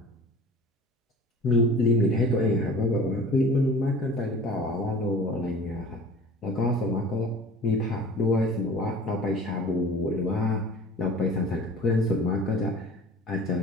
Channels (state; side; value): normal; both; correlation 0.42